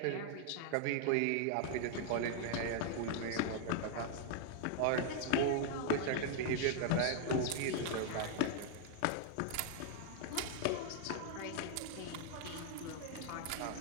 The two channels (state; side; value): different; both; correlation 0.00